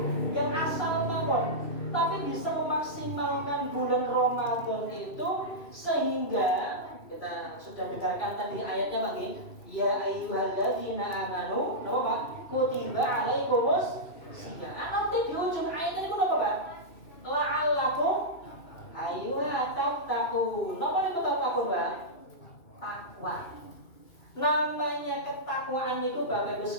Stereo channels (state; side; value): late; right; 2.6 ms